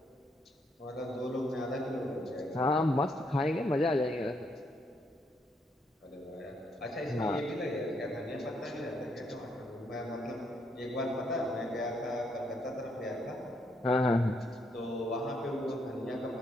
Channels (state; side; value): normal; both; correlation 0.74